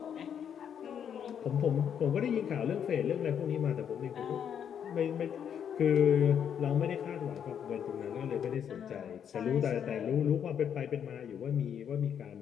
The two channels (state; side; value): quieter; right; 8.4 dB